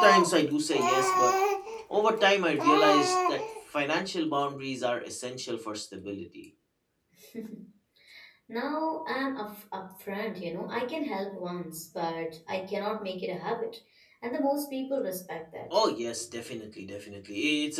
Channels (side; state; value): both; identical; correlation 1.00